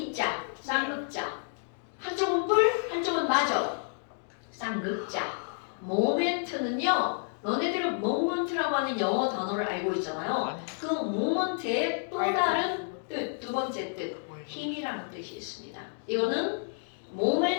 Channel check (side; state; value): right; silent; digital silence